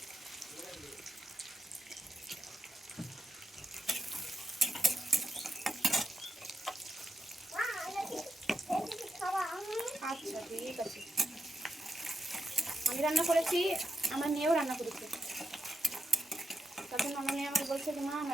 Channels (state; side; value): normal; both; correlation 0.86